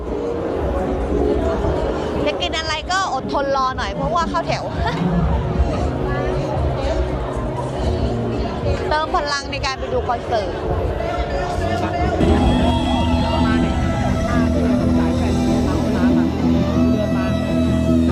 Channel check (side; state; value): both; identical; correlation 1.00